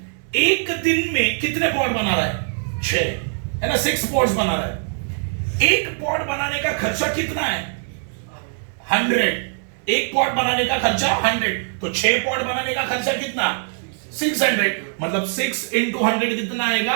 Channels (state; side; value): silent; left; 61 dB below the other